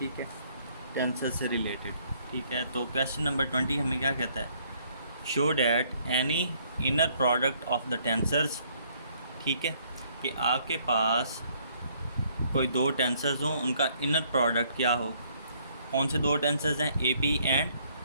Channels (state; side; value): inverted; both; correlation -0.65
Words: है, टेंसर से रिलेटेड। ठीक है, तो क्वेश्चन नंबर 20 हमें क्या कहता है? Show that any inner product of the tensors. ठीक है, कि आपके पास कोई दो टेंसर्स हों, उनका इनर प्रोडक्ट क्या हो। कौन से दो टेंसर्स हैं? A P and